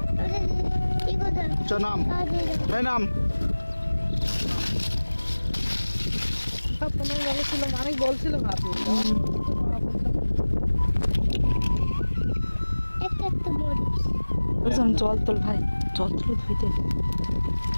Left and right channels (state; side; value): inverted; both; correlation -1.00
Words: কি কথা? নাম এই নাম তোমার বলেছিল, অনেক বলছিল ভাবি। একটা একটা মরিচ। বুঝলাম, জল তোল ভাই, জল তুলে ধুইতে।